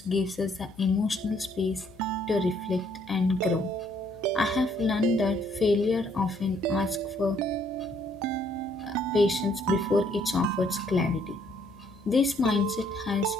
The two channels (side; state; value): left; noise; hum, 24 dB below the sound